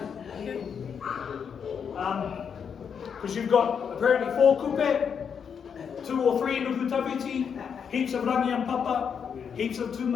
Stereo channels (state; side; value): quieter; right; 7.0 dB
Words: Because you've got apparently 4 Kupe, 2 or 3 Nukutawiti, heaps of rangi and papa, heaps of